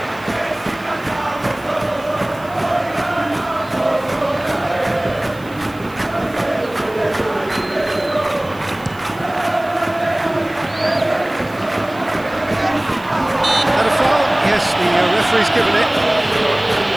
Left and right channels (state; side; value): noise; right; hiss, 24 dB below the sound